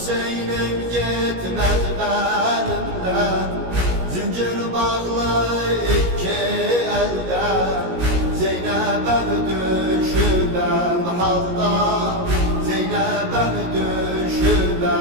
gitmez benimden, zincir bağlı iki elden. Zeynep'em düşübem halda, Zeynep'em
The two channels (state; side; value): late; left; 17 ms